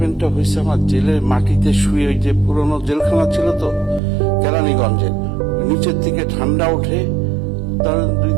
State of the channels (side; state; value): left; drops out; at 4.0 s